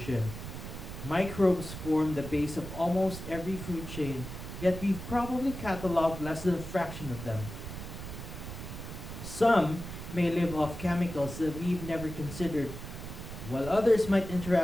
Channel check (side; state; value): right; noise; rumble, 9 dB below the sound